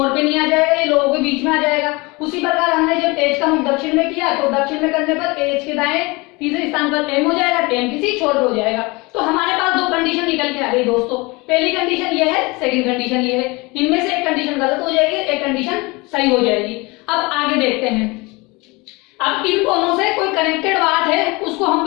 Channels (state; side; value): quieter; right; 25.1 dB